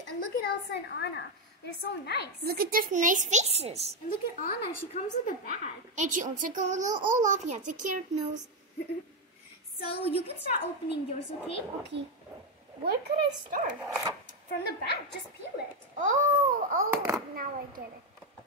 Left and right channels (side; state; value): both; normal; correlation 0.07